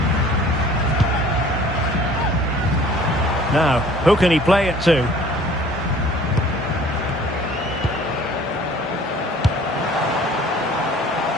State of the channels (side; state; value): both; normal; correlation 0.51